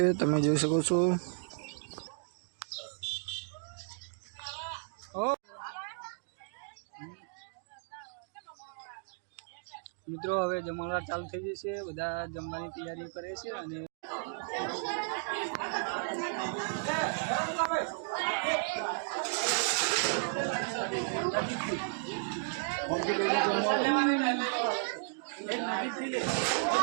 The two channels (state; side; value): silent; left; digital silence